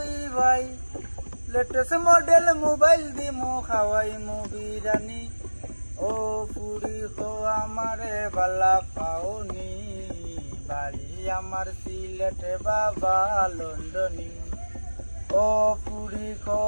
ভাই লেটেস্ট মডেল মোবাইল দিমু খাওয়াইমু বিরানি ও পুরি খো আমারে বালা পাওনি বাড়ি আমার সিলেট বাবা লন্ডনী ও পুরি খো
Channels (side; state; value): both; inverted; correlation -1.00